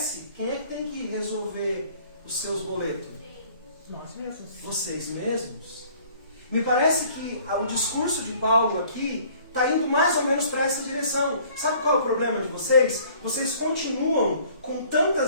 quem é que tem que resolver os seus boletos? Nós mesmos. Vocês mesmos. Me parece que o discurso de Paulo aqui está indo mais ou menos para essa direção. Sabe qual é o problema de vocês? Vocês continuam com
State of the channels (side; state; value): both; inverted; correlation -0.55